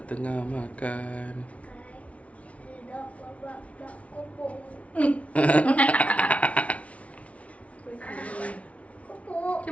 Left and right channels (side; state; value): right; late; 0.065 ms